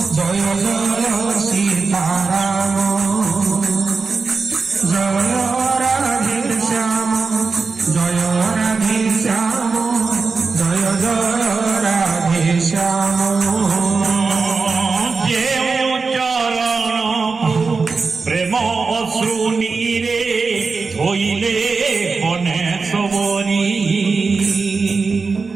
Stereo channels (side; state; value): left; quieter; 4.5 dB